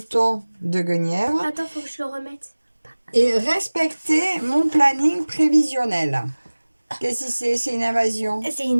de Guenièvre. Attends, faut que je le remette. Et respecter mon planning prévisionnel. Qu'est-ce que c'est? C'est une invasion. C'est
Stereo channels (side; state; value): both; inverted; correlation -1.00